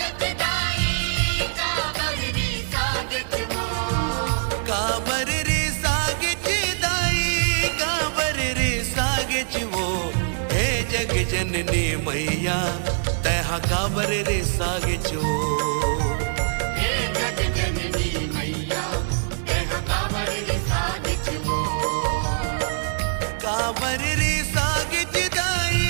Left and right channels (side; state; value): left; silent; digital silence